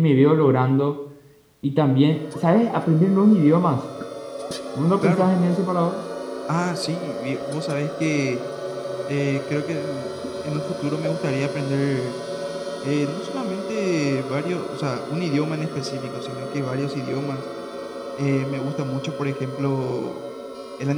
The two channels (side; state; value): both; identical; correlation 1.00